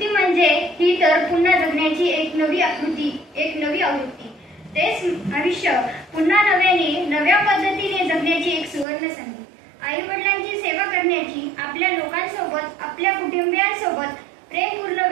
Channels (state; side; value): drops out; left; at 8.8 s